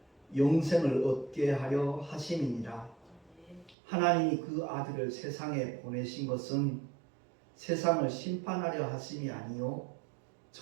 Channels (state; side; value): drops out; left; at 3.8 s